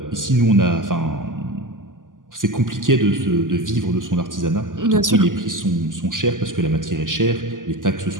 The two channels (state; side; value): late; left; 0.88 ms